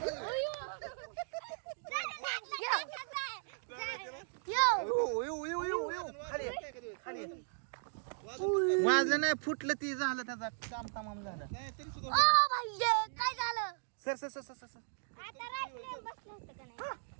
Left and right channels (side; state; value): left; silent; digital silence